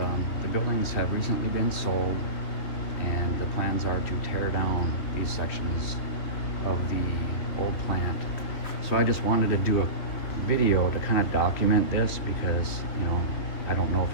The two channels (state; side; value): late; right; 3.5 ms